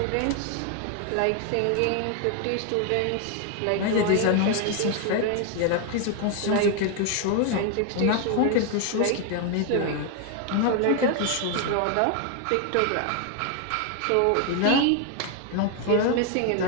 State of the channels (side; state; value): both; different; correlation 0.01